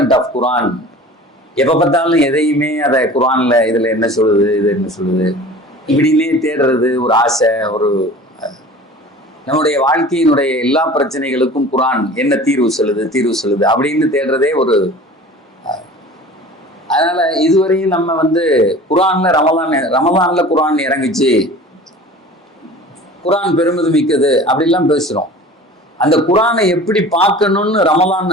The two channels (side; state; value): both; normal; correlation 0.41